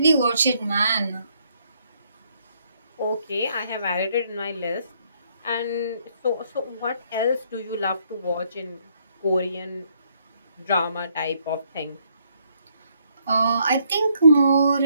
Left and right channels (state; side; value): inverted; both; correlation -0.70